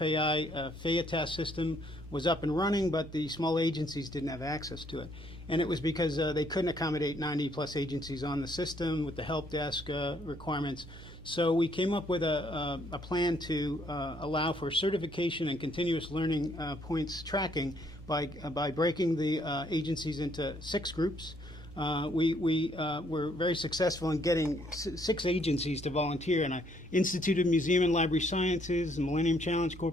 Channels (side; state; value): both; normal; correlation 0.68